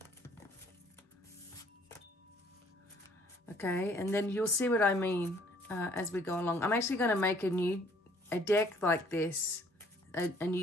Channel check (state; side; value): normal; both; correlation 0.60